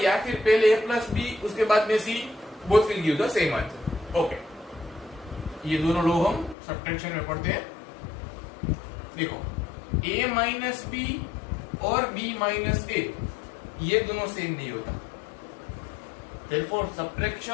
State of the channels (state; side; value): drops out; right; at 6.6 s